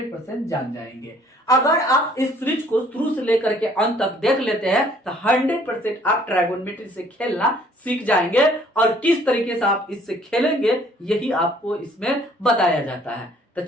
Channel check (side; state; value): both; normal; correlation 0.59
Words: जान जाएंगे। अगर आप इस सीरीज को शुरू से लेकर के अंत तक देख लेते हैं तो 100% आप ट्रायगोनोमेट्री से खेलना सीख जाएंगे, और किस तरीके से आप इससे खेलेंगे यही आपको इसमें बताया जाता है। तो